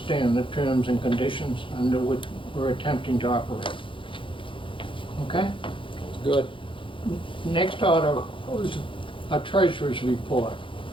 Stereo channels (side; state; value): right; late; 0.25 ms